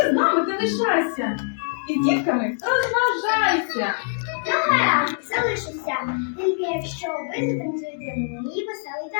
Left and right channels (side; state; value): right; silent; digital silence